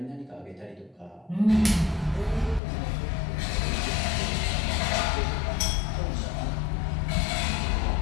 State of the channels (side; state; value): right; drops out; at 2.6 s